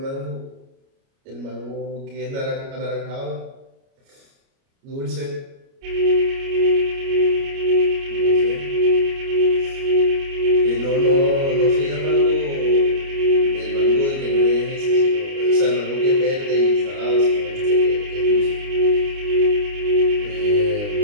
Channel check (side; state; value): left; late; 29 ms